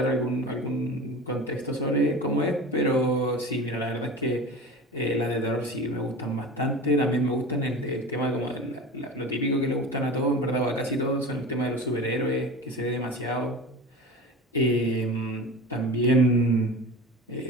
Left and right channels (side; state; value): both; normal; correlation 0.33